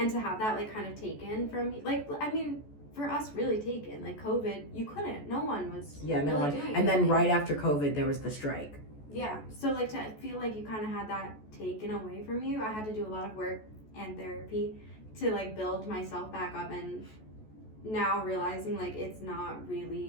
to have that like kind of taken from me, like, I mean, for us, really taken, like COVID, you couldn't, no one was doing and then right after COVID there was the strike. So like to feel like you kind of had that taken away from you, I had to do a lot of work and therapy to like build myself back up, and now realizing like it's not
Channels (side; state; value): right; late; 14 ms